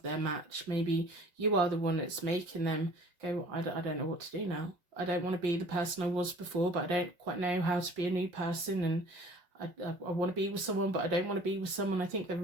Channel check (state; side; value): late; left; 5.7 ms